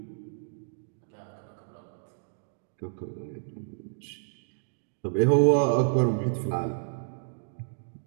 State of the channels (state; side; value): silent; left; digital silence